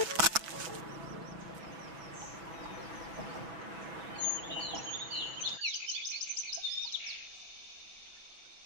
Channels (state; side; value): late; left; 6.1 ms